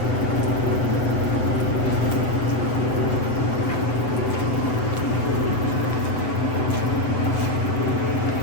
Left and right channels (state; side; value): late; right; 7.9 ms